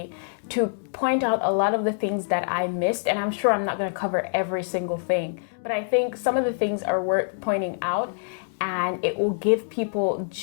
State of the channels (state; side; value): silent; right; 61 dB below the other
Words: to point out a lot of the things that I missed, and I'm sure I'm not going to cover every single thing, but I think some of the things are worth pointing out, and it will give people